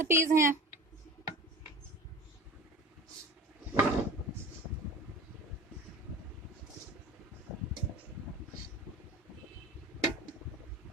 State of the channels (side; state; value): both; normal; correlation 0.35